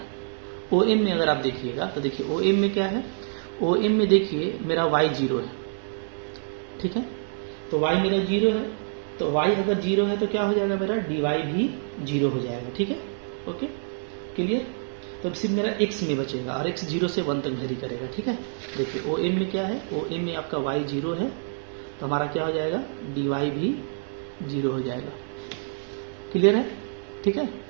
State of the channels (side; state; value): left; silent; digital silence